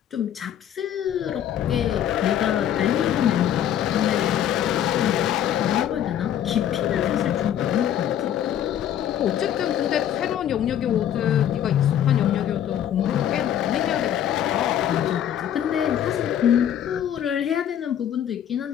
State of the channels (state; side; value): quieter; right; 10.3 dB